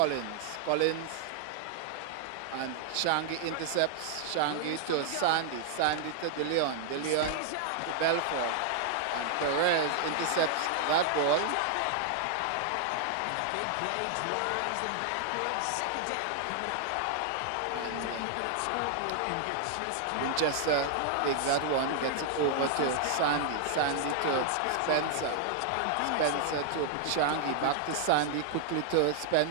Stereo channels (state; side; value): different; both; correlation -0.01